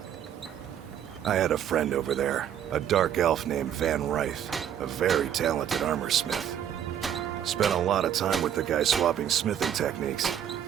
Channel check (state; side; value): quieter; left; 9.8 dB